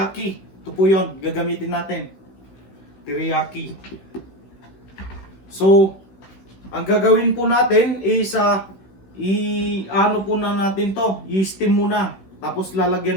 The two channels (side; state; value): right; late; 16 ms